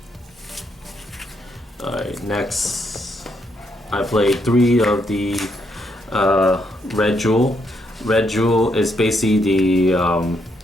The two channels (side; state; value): both; normal; correlation 0.76